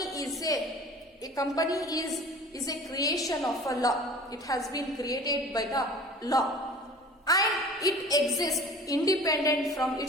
is a creation of a law. It has been created by the law and it exists independent from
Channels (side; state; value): both; normal; correlation 0.43